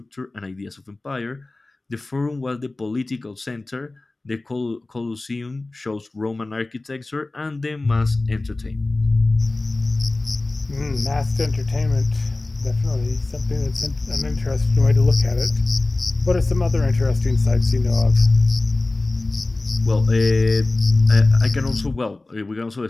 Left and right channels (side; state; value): right; quieter; 3.0 dB